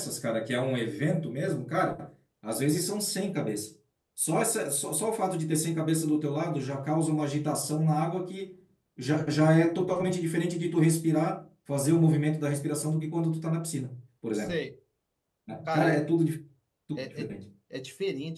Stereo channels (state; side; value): identical; both; correlation 1.00